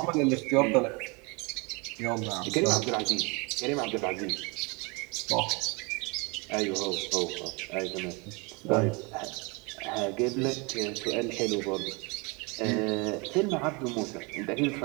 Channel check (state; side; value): quieter; left; 29.3 dB